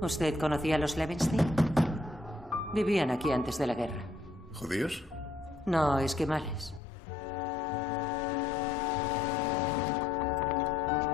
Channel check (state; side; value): drops out; right; at 6.8 s